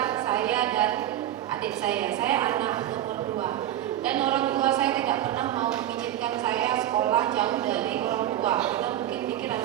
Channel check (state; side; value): quieter; left; 12.3 dB